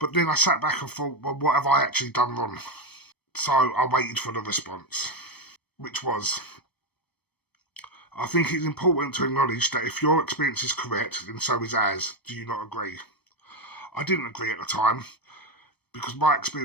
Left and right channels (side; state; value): right; late; 0.99 ms